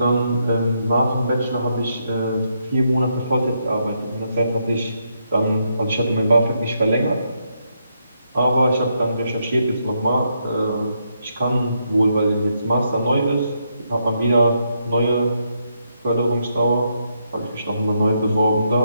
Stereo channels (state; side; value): inverted; both; correlation -0.78